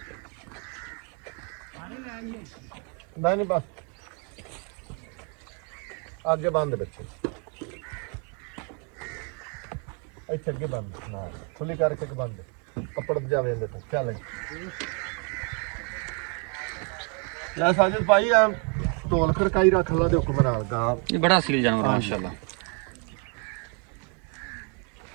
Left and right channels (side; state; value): left; quieter; 37.4 dB